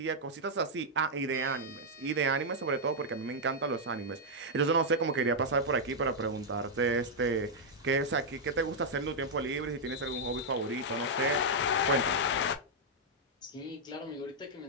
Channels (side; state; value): both; normal; correlation -0.04